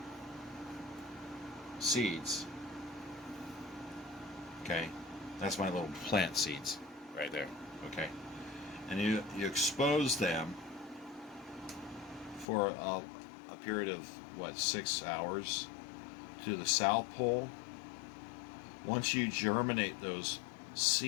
seeds, okay, that's my little plant seeds right there, okay, and you expose them for a period of what, 6 hours to the South Pole. Once you germinate those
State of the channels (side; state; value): right; drops out; at 12.5 s